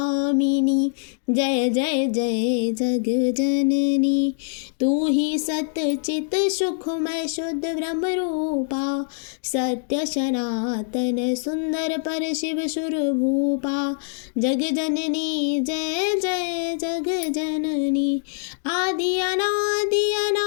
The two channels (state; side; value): silent; right; digital silence